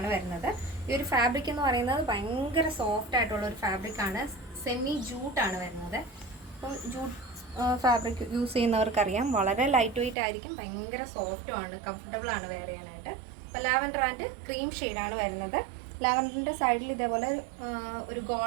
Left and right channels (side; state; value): left; drops out; at 10.2 s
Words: വരുന്നത്. ഈ ഒരു ഫാബ്രിക് എന്ന് പറയുന്നത് ഭയങ്കര സോഫ്റ്റ് ആയിട്ടുള്ള ഒരു ഫാബ്രിക് ആണ്. സെമി ജൂട്ടാണ് വരുന്നത്. അപ്പം ജൂട്ട് ഫാബ്രിക് യൂസ് ചെയ്യുന്നവർക്കറിയാം വളരെ ലൈറ്റ് വെയിറ്റ് ആയിരിക്കും, ഭയങ്കര സോഫ്റ്റും ആണ്, കംഫർട്ടബിൾ ആണ് വെയർ ചെയ്യാനായിട്ട്. അപ്പോൾ ലാവൻഡർ ആൻഡ് ക്രീം ഷെയ്ഡാണ് വരുന്നത്. ലാവൻഡറിൻ്റെ സൈഡിൽ ഇതേപോലെ ഒരു